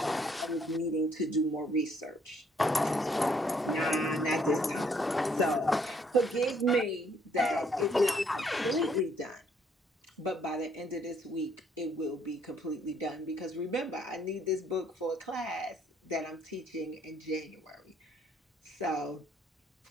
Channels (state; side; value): normal; both; correlation 0.67